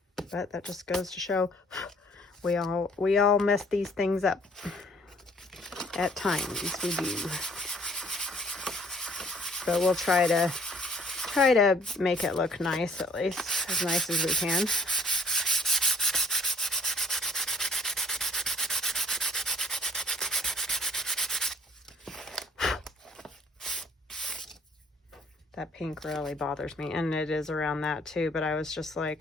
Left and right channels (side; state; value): both; normal; correlation 0.58